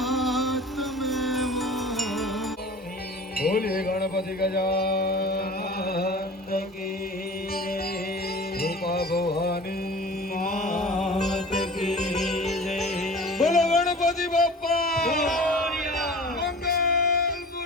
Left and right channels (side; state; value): both; normal; correlation 0.40